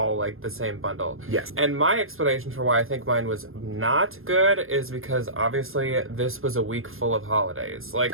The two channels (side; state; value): left; late; 0.60 ms